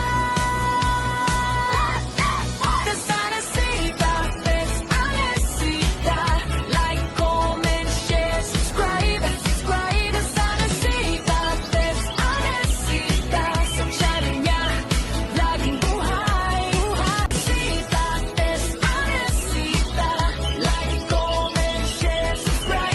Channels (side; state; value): both; identical; correlation 1.00